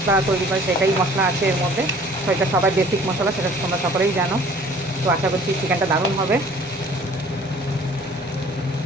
তৈরি করে সেটাই মশলা আছে এর মধ্যে। তো এটা সবাই বেসিক মশলা, সেটা তোমরা সকলেই জানো। তো আশা করছি চিকেনটা দারুণ হবে।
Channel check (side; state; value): both; normal; correlation 0.52